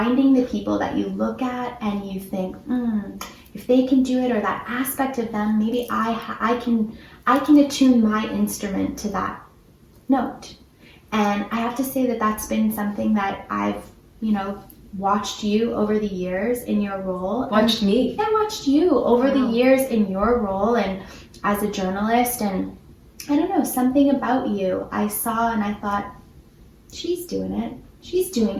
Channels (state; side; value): identical; both; correlation 1.00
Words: the people that you look at and you think, if they can do it, or that aspect of them, maybe I can attune my instrument to that note. And I have to say that that's been something that I've, you know, watched you over the years in your role. Watched me. I watched you over the years in your role and as a journalist, and I don't know, something about you I saw and I thought, she's doing it. She's doing,